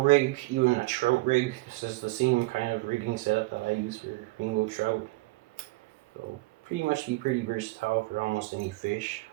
even a trout rig. This is the same kind of rigging setup that I use for rainbow trout. So pretty much be pretty versatile for almost any fish.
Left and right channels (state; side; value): quieter; left; 22.1 dB